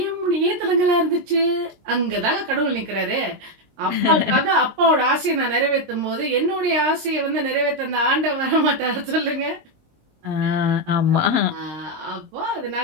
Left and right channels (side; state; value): left; late; 19 ms